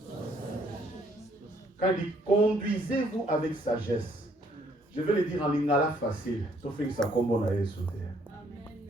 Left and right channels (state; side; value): normal; both; correlation 0.66